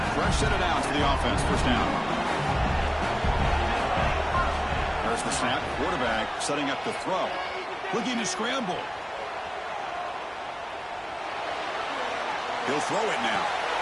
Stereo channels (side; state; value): both; identical; correlation 1.00